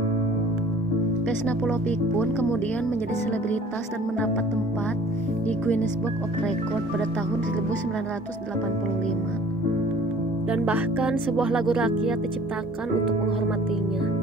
Vesna Pulpolik pun kemudian menjadi selebritas dan mendapat tempat di Guinness Book of Record pada tahun 1985. Dan bahkan sebuah lagu rakyat diciptakan untuk menghormatinya,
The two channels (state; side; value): normal; both; correlation 0.50